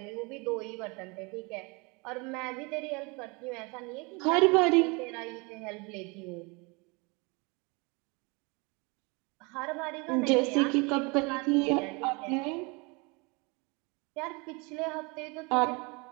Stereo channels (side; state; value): left; quieter; 28.6 dB